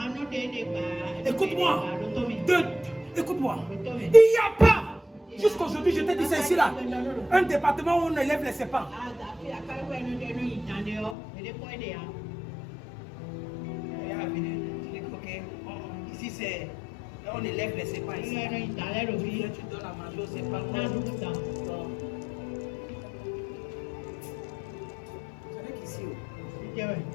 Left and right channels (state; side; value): drops out; right; at 11.2 s